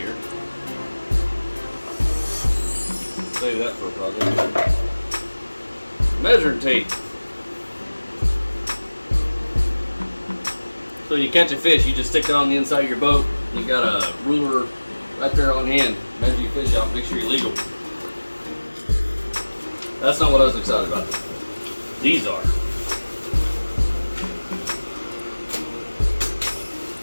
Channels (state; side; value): inverted; both; correlation -1.00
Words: Save that for a project. Measuring tape. So you catch a fish, you just stick it on the inside of your boat. You got a ruler right there on hand. Measure your fish out, make sure you're legal. That's not what I was excited about. These are.